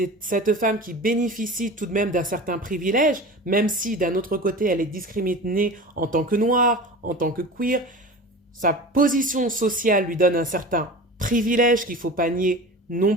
cette femme qui bénéficie tout de même d'un certain privilège, même si d'un autre côté, elle est discriminée en tant que noire, en tant que queer. Sa position sociale lui donne un certain privilège qu'il ne faut pas nier non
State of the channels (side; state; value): both; normal; correlation 0.34